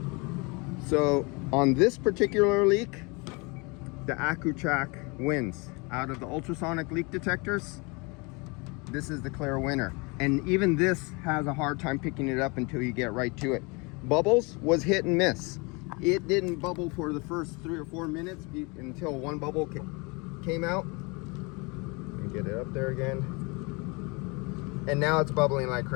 So on this particular leak, the AccuTrack wins. Out of the ultrasonic leak detectors, this is the clear winner. And even this has a hard time picking it up until you get right to it. Bubbles was hit and miss. It didn't bubble for the first 3 or 4 minutes until one bubble came out. Get it up there again, and now it's bubbling like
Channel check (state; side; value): quieter; right; 28.8 dB